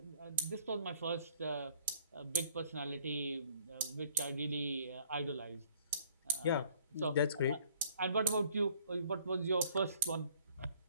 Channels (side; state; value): both; inverted; correlation -0.60